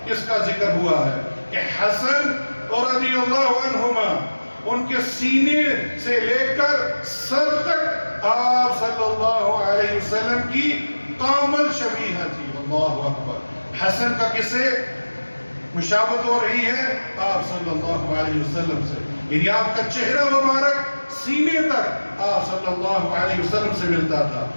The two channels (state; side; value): inverted; both; correlation -1.00